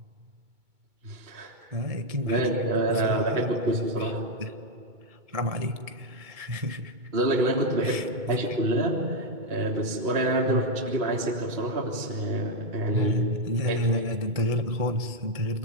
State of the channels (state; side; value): late; left; 2.2 ms